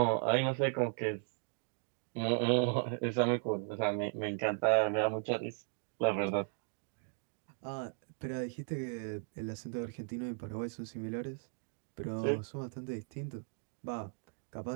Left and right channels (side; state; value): left; silent; 53 dB below the other